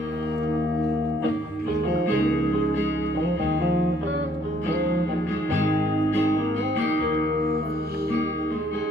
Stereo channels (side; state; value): both; normal; correlation 0.65